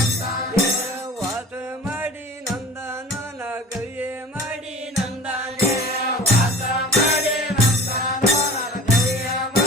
ವಾಸ ಮಾಡಿ ನಂದಾನೋ ನಾ ಗವಿಯೇ ಮಾಡಿ ನಂದಾನೆ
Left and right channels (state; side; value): normal; both; correlation 0.40